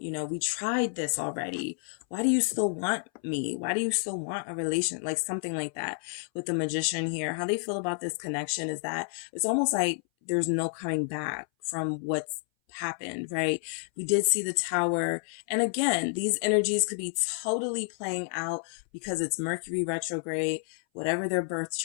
tried this already. Why do you still want me? Why do you still want a relation? Like something like that with the Magician here. How they feel about this connection is that it's almost like there's no coming back from what's happened, right? We did see the Tower. And again, these energies could be totally playing out because it's Mercury retrograde. Whatever their birth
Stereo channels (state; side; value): silent; right; 58 dB below the other